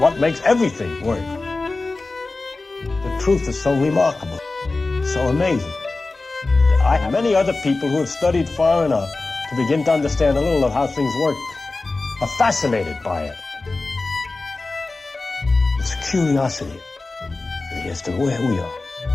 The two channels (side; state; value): right; quieter; 3.4 dB